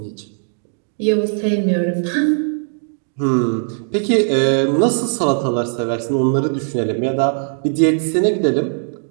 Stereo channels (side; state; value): left; silent; 61 dB below the other